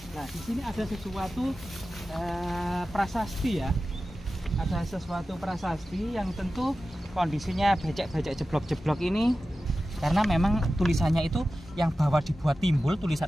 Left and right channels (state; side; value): normal; both; correlation 0.94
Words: Nah, di sini ada sesuatu prasasti ya. Ada sesuatu prasasti yang tentu kondisinya becek-becek jeblok-jeblok ini. Karena memang tulisannya itu yang bawah dibuat timbul